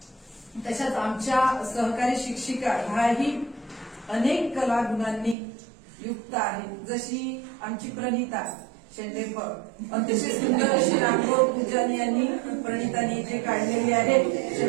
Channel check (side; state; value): left; drops out; at 5.4 s